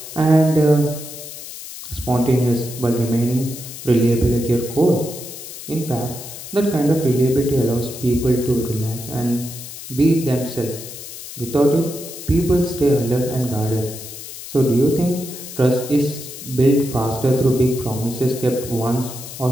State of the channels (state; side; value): noise; left; hiss, 12 dB below the sound